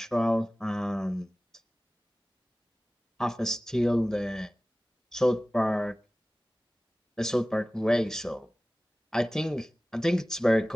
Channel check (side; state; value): both; normal; correlation 0.97